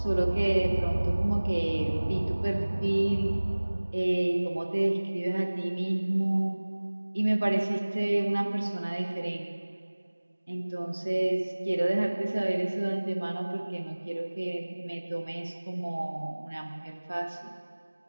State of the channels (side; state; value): both; inverted; correlation -1.00